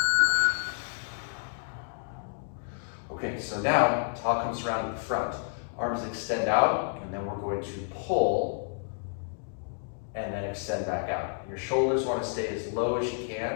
Okay, so now towel comes around to the front. Arms extend out, and then we're going to pull and then extend back out. Your shoulders want to stay as low as you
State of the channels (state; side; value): silent; right; digital silence